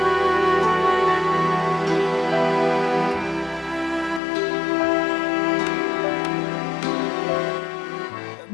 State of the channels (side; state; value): right; drops out; at 4.2 s